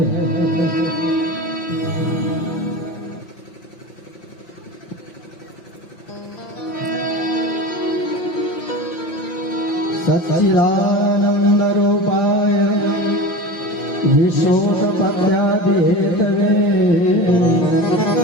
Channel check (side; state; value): right; late; 5.8 ms